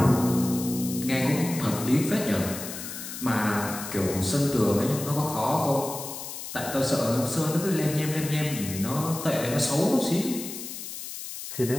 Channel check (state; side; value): noise; left; hiss, 9 dB below the sound